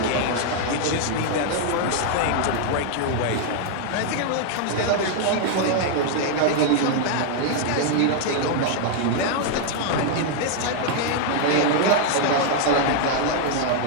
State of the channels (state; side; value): different; both; correlation 0.00